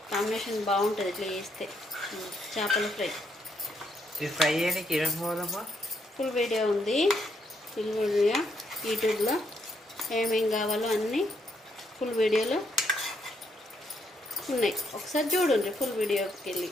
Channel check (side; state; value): both; normal; correlation 0.75